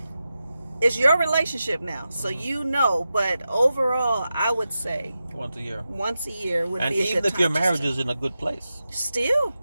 it's your relationship now, so but overall, I would say once a year would be a good time. And even if your marriage is in a good place, still,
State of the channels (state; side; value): inverted; both; correlation -0.91